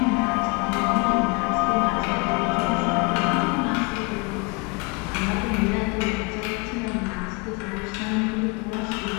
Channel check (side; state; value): right; quieter; 29.2 dB